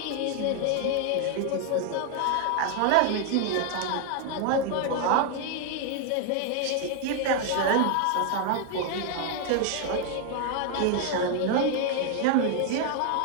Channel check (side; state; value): both; different; correlation 0.00